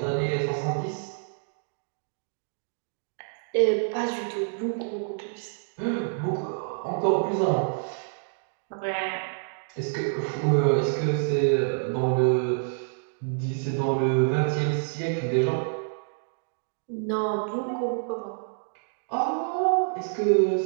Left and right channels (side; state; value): left; silent; digital silence